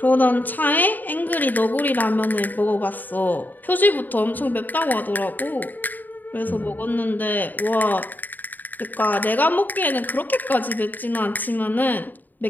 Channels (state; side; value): late; right; 0.087 ms